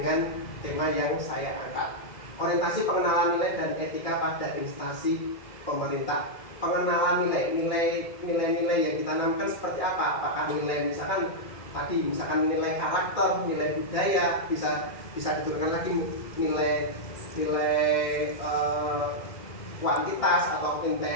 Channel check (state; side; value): late; right; 2.0 ms